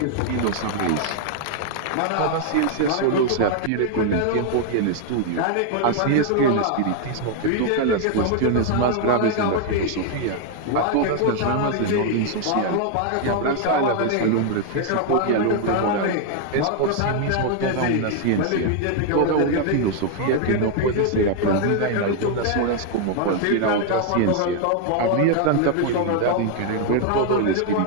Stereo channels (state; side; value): different; both; correlation 0.00